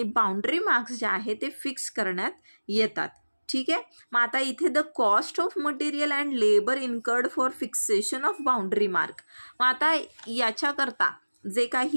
बाउंड्री मार्क्स जे आहे ते फिक्स करण्यात येतात, ठीक आहे. मग आता इथे the cost of material and labour incurred for fixation of boundary mark. मग आता याच्याकरता जे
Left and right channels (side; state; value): both; inverted; correlation -1.00